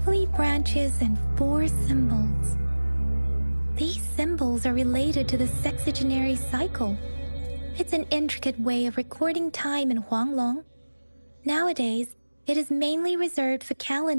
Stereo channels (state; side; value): inverted; both; correlation -1.00